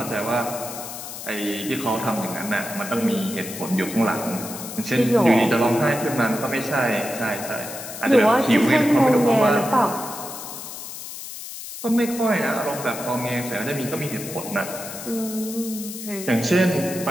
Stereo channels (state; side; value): noise; left; hiss, 10 dB below the sound